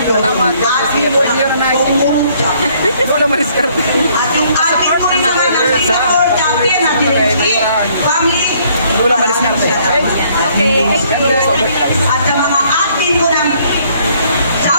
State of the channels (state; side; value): inverted; both; correlation -0.64